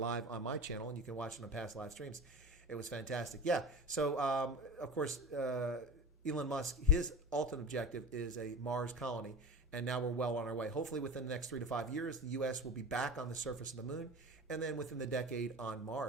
on my channel, and you can watch it on past live streams. It was fantastic. Yeah, so of course, Elon Musk, his ultimate objective is a Mars colony, and now we're well on our way. Hopefully within the next 3 to 5 years, the U.S. will be back on the surface of the moon, and then within the decade on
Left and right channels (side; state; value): both; normal; correlation 0.32